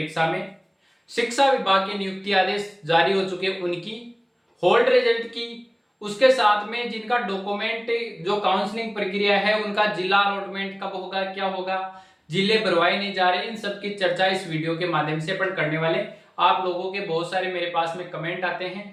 में शिक्षा विभाग के नियुक्ति आदेश जारी हो चुके उनकी होल्ड रिजल्ट की, उसके साथ में जिनका डॉक्यूमेंट जो काउंसलिंग प्रक्रिया है उनका जिला अलॉटमेंट कब होगा, क्या होगा, जिले भरवाए नहीं जा रहे, इन सब की चर्चा इस वीडियो के माध्यम से अपन करने वाले। आप लोगों के बहुत सारे मेरे पास में कमेंट आते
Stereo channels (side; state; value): both; identical; correlation 1.00